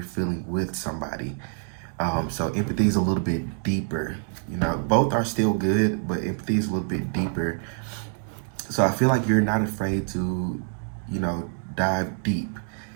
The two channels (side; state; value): left; silent; 61 dB below the other